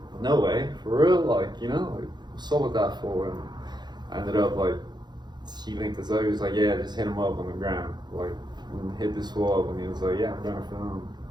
no way, for real, like, you know, like, what's up with that for? And I ended up like, he linked us up. He was like, yeah, just hit him up on the ground, like, and hit this fool up, and he was like, yeah, I'm gonna film.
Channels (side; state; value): left; late; 0.21 ms